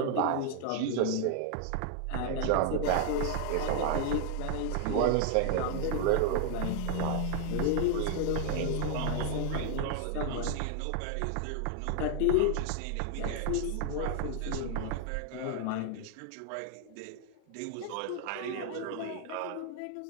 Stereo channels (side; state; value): both; different; correlation 0.00